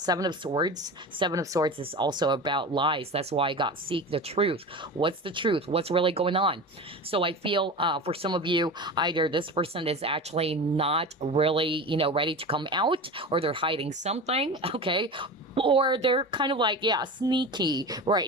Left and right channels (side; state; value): both; normal; correlation 0.29